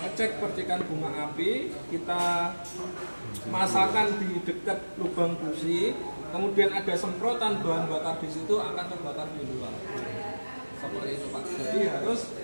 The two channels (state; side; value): inverted; both; correlation -1.00